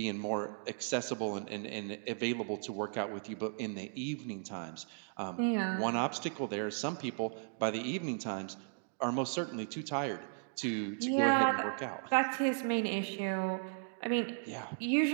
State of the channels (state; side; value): silent; left; digital silence